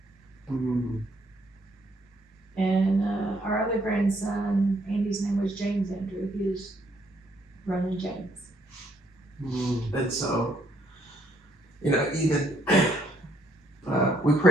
Mm, And our other grandson, Andy's name was James Andrew. He was running James. And so, even we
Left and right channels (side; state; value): both; normal; correlation 0.69